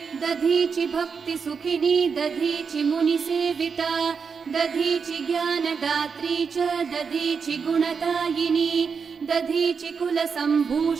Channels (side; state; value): left; quieter; 5.8 dB